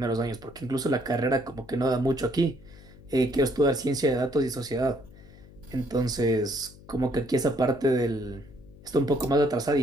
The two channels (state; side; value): noise; left; hum, 21 dB below the sound